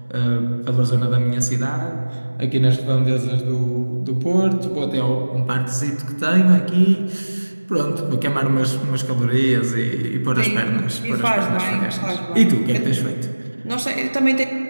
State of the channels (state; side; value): inverted; both; correlation -1.00